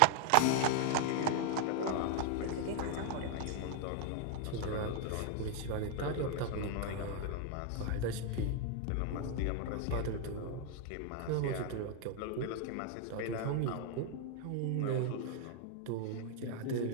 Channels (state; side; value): different; both; correlation 0.00